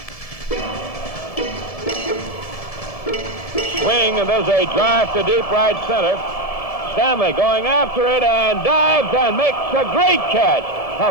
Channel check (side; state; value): right; late; 1.7 ms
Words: Swing, and there's a drive to deep right center. Stanley going after it and dives and makes a great catch.